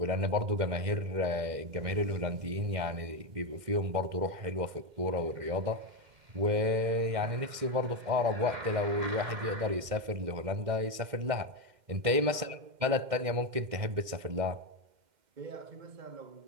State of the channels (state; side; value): late; left; 2.1 ms